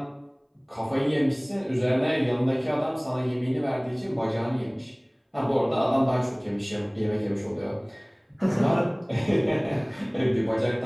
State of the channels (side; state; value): both; identical; correlation 1.00